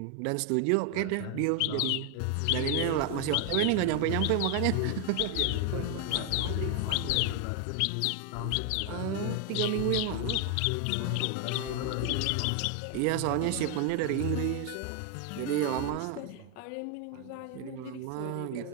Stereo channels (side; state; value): both; different; correlation 0.01